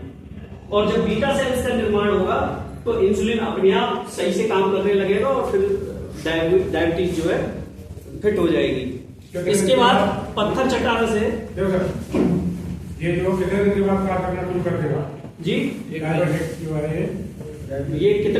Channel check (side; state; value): both; identical; correlation 1.00